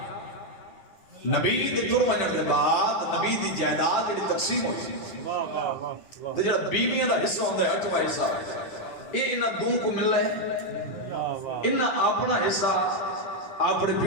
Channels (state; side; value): late; right; 9.7 ms